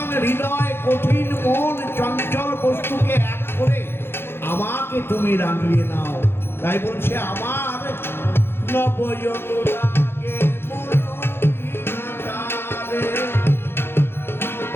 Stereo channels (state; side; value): late; right; 0.11 ms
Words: হৃদয় কঠিন মন চঞ্চল বস্তুকে এক করে আমাকে তুমি রাঙিয়ে নাও। তাই বলছে আমার নব অনুরাগ